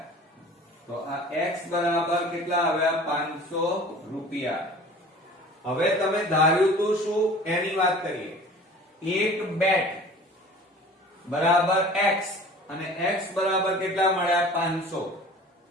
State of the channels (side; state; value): both; normal; correlation 0.44